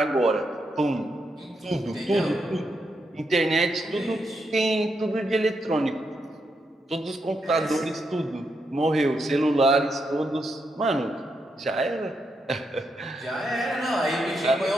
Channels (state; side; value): normal; both; correlation 0.82